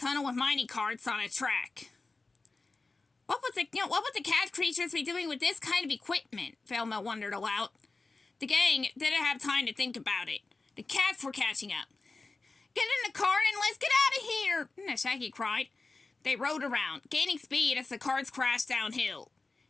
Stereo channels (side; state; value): right; quieter; 3.7 dB